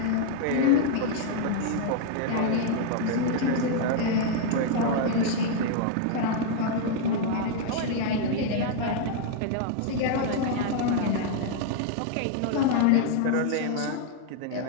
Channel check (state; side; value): different; both; correlation -0.01